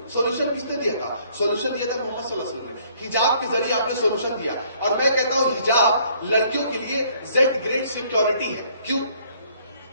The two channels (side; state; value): both; inverted; correlation -0.62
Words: سولوشن کس نے دیا تھا؟ سولوشن دیا تھا محمد صلی اللہ علیہ وسلم نے. حجاب کے ذریعے آپ نے سولوشن دیا. اور میں کہتا ہوں حجاب لڑکیوں کے لیے زیڈ گریڈ سیکیورٹی ہے. کیوں؟